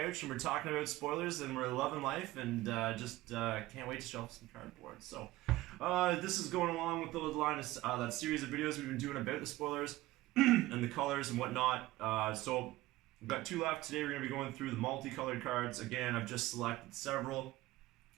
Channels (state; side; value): quieter; left; 17.7 dB